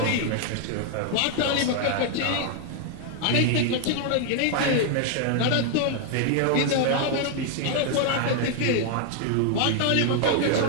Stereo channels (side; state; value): both; different; correlation 0.00